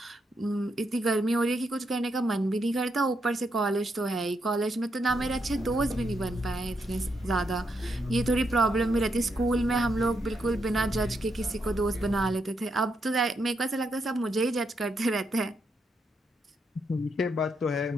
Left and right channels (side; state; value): both; normal; correlation 0.80